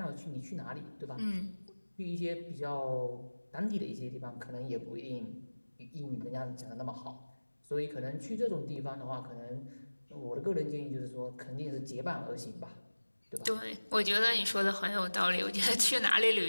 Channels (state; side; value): inverted; both; correlation -1.00